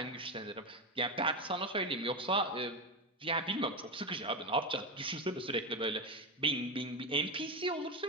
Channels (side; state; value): both; normal; correlation 0.14